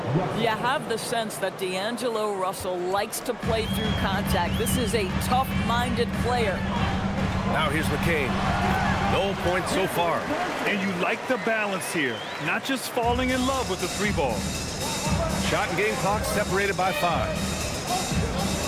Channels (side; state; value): both; identical; correlation 1.00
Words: You have the sense that D'Angelo Russell likes to play through contact. This is a tough-minded player. Now here's McCain. No points so far. And you like the balance here, not just falling in love with the 3-ball. Shot and game clock separated by 5.